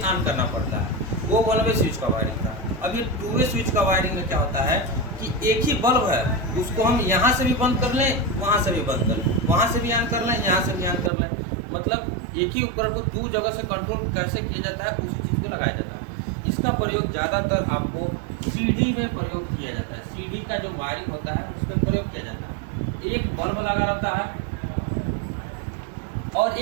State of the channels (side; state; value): left; drops out; at 11.1 s